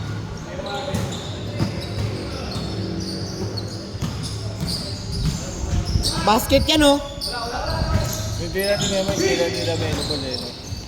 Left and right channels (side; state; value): both; identical; correlation 1.00